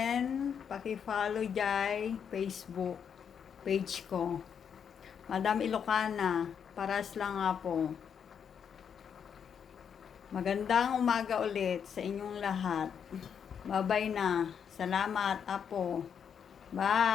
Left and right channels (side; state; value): right; quieter; 7.5 dB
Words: pakifollow dyan Facebook page ko. Madam Ilocana, paras lang nga po. Magandang umaga ulit sa inyong lahat. Babay na. Salamat, Apo.